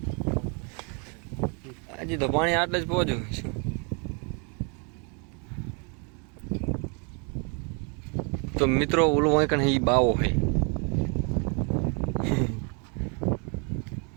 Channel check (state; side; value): quieter; left; 36.3 dB